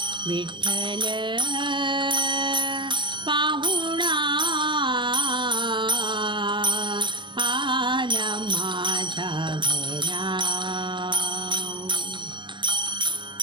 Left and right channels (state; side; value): late; left; 0.23 ms